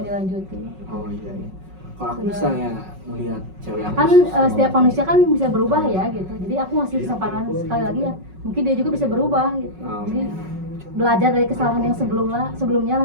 dilanjutin. Oh iya. Kalau aku misalnya melihat cewek aku Kan setiap manusia kan bisa berubah ya gitu, jadi aku ngasih kesempatan sekali lagi ya, mungkin dia juga bisa berubah gitu. Oh. Jadi belajar dari kesalahan yang sebelumnya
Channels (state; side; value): late; left; 5.4 ms